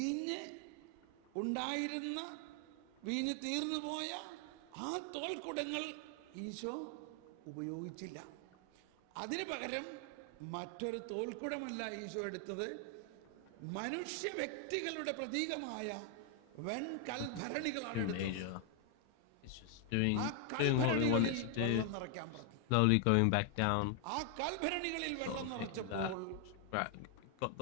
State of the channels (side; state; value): both; different; correlation 0.00